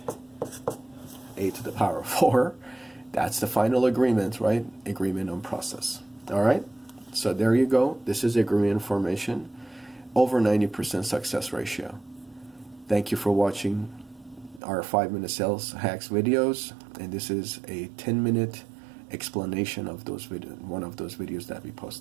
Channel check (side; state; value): left; drops out; at 14.6 s